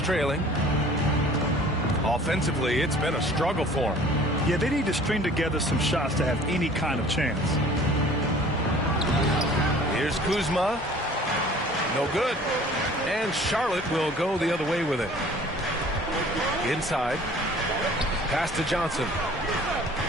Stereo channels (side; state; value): both; normal; correlation 0.49